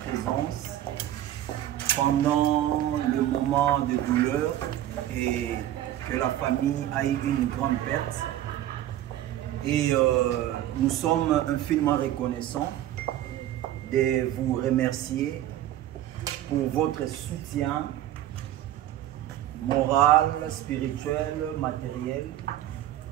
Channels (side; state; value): left; quieter; 12.9 dB